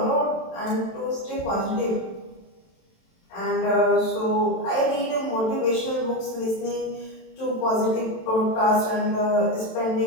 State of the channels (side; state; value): right; late; 27 ms